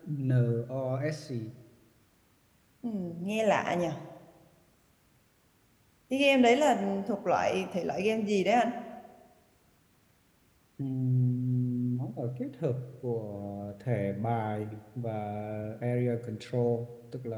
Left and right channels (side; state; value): both; identical; correlation 1.00